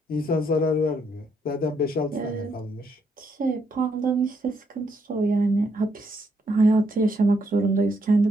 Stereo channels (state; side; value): normal; both; correlation 0.75